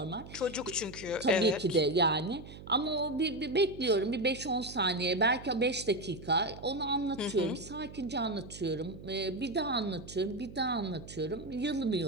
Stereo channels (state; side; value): noise; right; hum, 15 dB below the sound